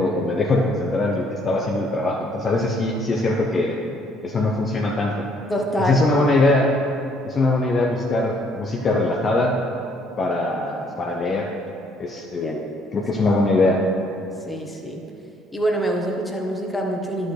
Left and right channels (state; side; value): normal; both; correlation 0.66